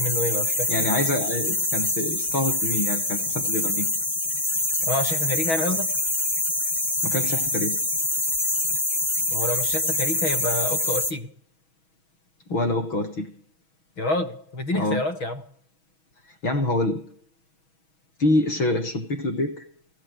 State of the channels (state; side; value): late; right; 6.2 ms